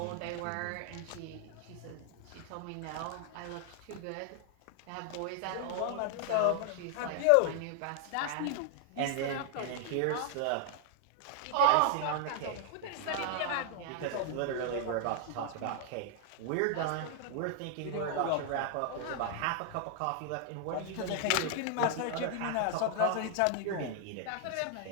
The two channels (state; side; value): different; both; correlation 0.00